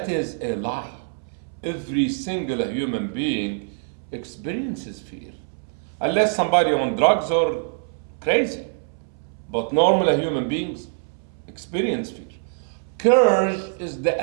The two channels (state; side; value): silent; left; 63 dB below the other